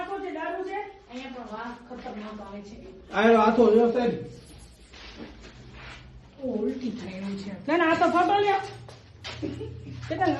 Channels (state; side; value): identical; both; correlation 1.00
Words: છે, દારૂ છે. અહીંયા પણ વાહ ખતરનાક આવે છે આયરો આખો જો સાહેબ ઉલટી થઈ રહી છે ના ના, આ તો ફોટો લ્યો. ચેતન